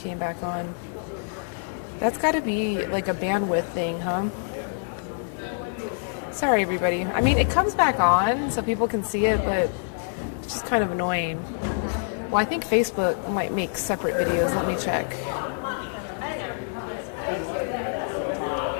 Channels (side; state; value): right; silent; digital silence